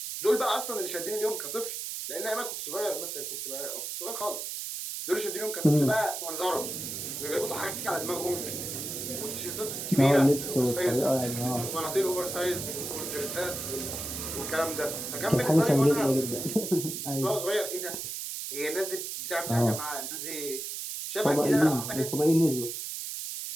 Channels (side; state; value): right; noise; hiss, 5 dB below the sound